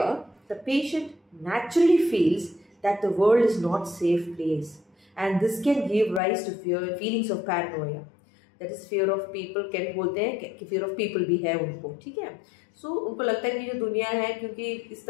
the patient naturally feels that the world is not safe place, and this can give rise to fear feelings of paranoia, that is fear of people. कैन बोलते हैं कि fear of people भी है उनको, ठीक है। सो उनको लगता है कि जो दुनिया है, क्योंकि इस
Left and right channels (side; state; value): right; drops out; at 6.2 s